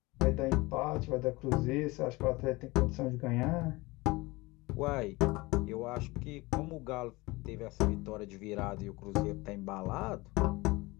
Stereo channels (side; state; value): right; quieter; 22.5 dB